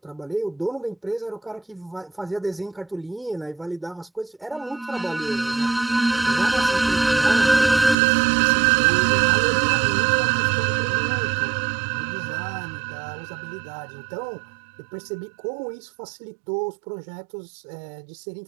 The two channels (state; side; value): drops out; left; at 8.0 s